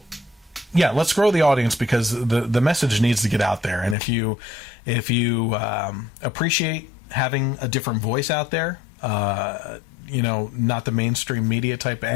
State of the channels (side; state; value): right; drops out; at 4.0 s